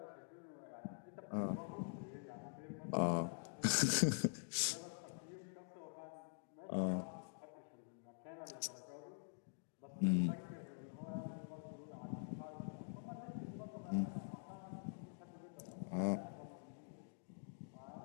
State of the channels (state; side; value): silent; right; digital silence